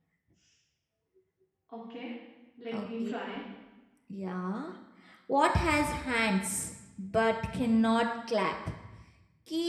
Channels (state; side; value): identical; both; correlation 1.00